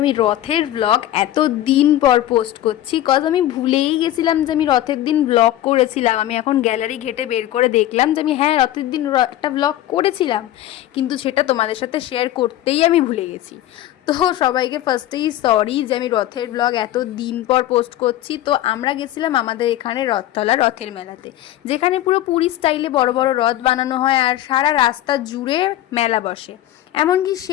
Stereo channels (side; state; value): right; quieter; 13.5 dB